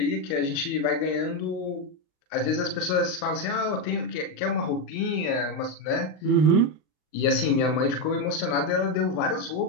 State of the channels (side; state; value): right; late; 39 ms